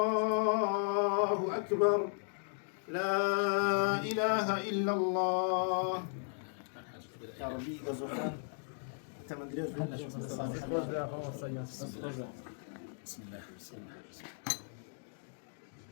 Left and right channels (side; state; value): right; silent; digital silence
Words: أكبر لا إله إلا الله يا ربي غزوخان تمن دريز بسم الله